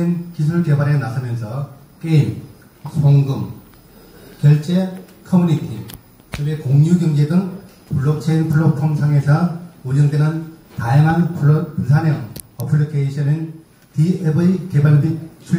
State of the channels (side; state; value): both; identical; correlation 1.00